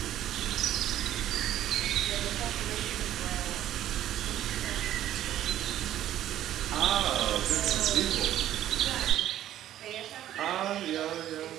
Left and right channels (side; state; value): left; quieter; 12.3 dB